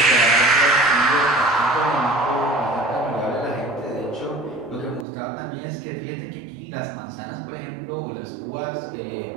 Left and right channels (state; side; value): drops out; left; at 5.1 s